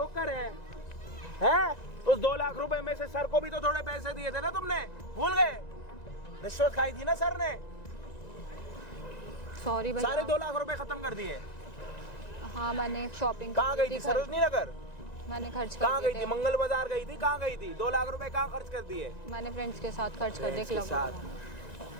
हैं? उस 2 लाख रुपए में से सर को भी तो थोड़े पैसे दिए थे ना तुमने, भूल गए? रिश्वत खाई थी ना सर ने, सॉरी भैया। सारे 2 लाख रुपए खत्म कर दिए। हाँ मैंने शॉपिंग कहाँ गई थी? सरोजनी नगर? मैंने खर्च कहाँ कर गई दिए थी? मंगल बाजार गई थी? कहाँ गई थी? 2 लाख रुपए कहाँ खर्च कर दिए? मैंने फ्रेंड्स के साथ खर्च कर दिए फ्रेंड्स के क्लब साथ। में।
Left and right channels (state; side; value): late; right; 1.9 ms